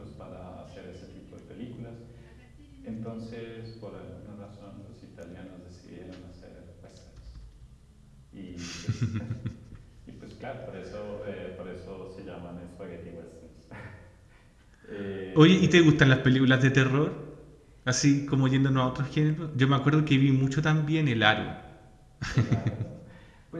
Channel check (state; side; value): identical; both; correlation 1.00